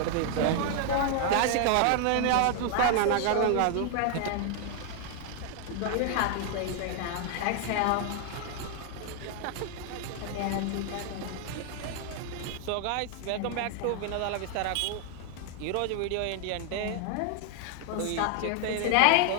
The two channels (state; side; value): different; both; correlation 0.00